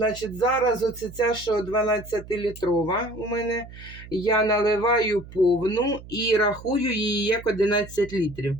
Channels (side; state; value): right; noise; hum, 16 dB below the sound